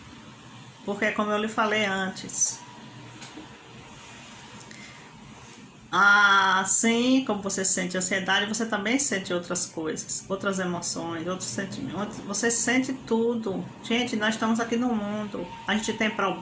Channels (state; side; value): identical; both; correlation 1.00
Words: porque como eu lhe falei antes, assim como você sente ansiedade, você também sente outras coisas, outras emoções, outros sentimentos. Você sente tudo. Gente, nós estamos aqui no mundo. A gente tem